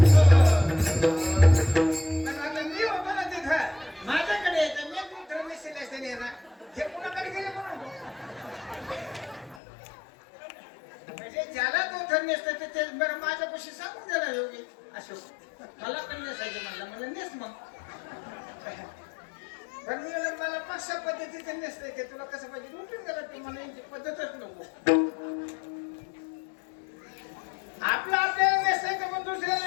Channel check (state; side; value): drops out; right; at 9.6 s